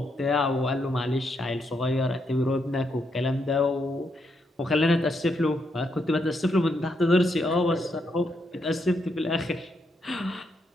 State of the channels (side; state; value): both; normal; correlation 0.79